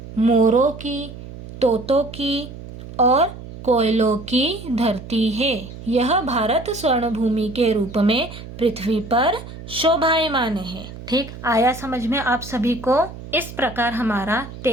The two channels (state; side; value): noise; right; hum, 13 dB below the sound